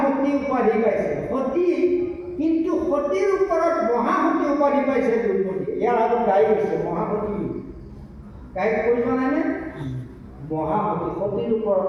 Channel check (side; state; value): both; identical; correlation 1.00